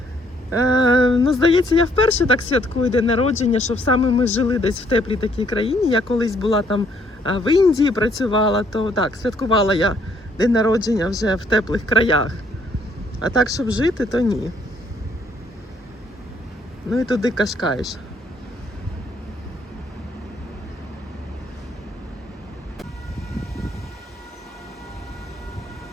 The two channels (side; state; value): both; normal; correlation 0.67